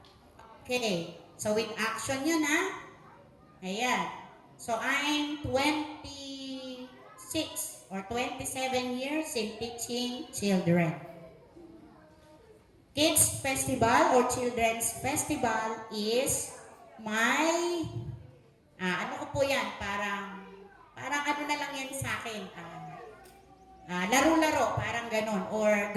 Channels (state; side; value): identical; both; correlation 1.00